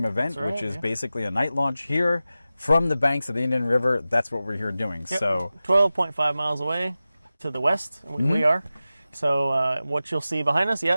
event, which is basically a night launch here from the banks of the Indian River. That's what we're here doing. Yep. So 12.5 miles away to the west, we are. So what you'll see behind us,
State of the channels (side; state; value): both; inverted; correlation -0.95